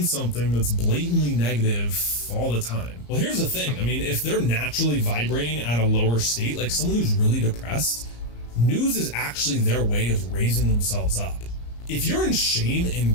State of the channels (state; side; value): late; right; 34 ms